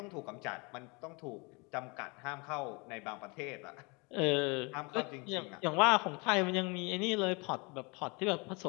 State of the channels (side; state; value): right; quieter; 29.4 dB